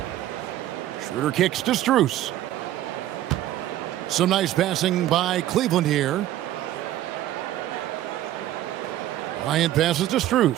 Schroeder kicks to Strus. Some nice passing by Cleveland here. Bryant passes to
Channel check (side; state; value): left; quieter; 13.4 dB